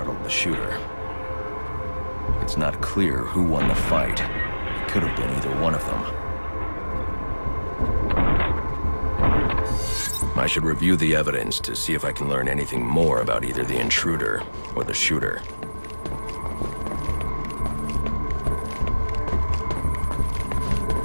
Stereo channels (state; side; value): inverted; both; correlation -1.00